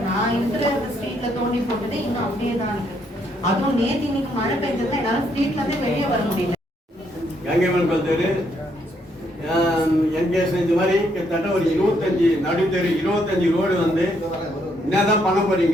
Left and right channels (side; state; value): both; normal; correlation 0.73